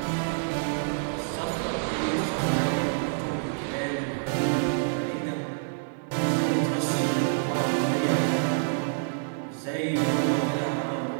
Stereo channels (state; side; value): silent; left; digital silence